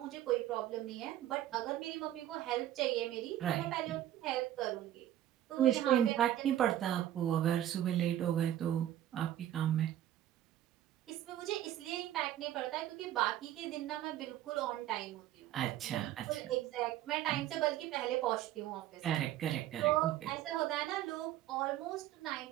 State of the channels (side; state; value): left; quieter; 12.5 dB